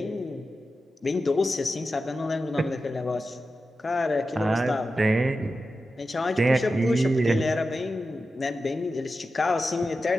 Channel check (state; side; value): normal; both; correlation 0.91